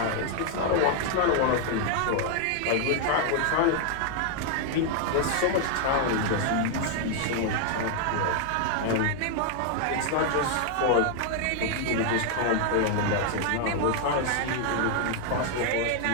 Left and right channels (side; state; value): both; different; correlation 0.00